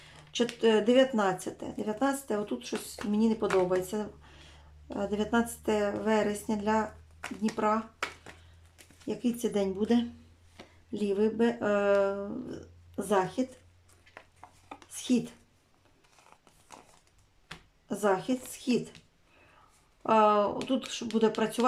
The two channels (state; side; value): identical; both; correlation 1.00